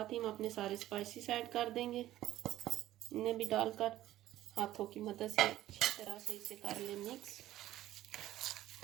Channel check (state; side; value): quieter; left; 14.1 dB